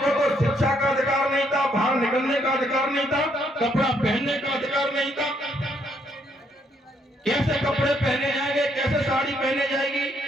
तो शिक्षा का अधिकार नहीं था, बाहर निकलने का अधिकार नहीं था, कपड़ा पहनने का अधिकार नहीं था। कैसे कपड़े पहने जाएंगे, कैसे साड़ी पहने जाएगी,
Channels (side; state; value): both; normal; correlation 0.72